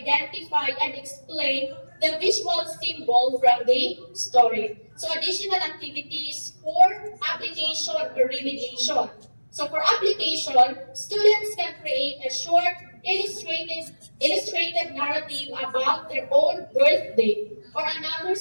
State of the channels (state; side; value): inverted; both; correlation -1.00